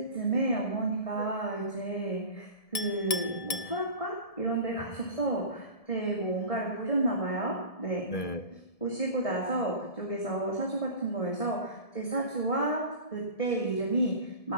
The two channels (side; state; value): right; late; 1.7 ms